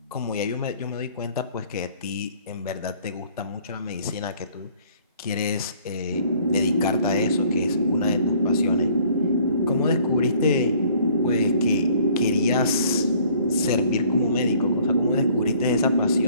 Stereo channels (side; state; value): both; inverted; correlation -0.58